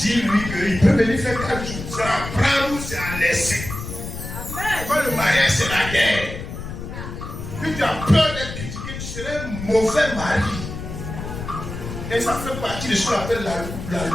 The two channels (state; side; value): noise; left; rumble, 8 dB below the sound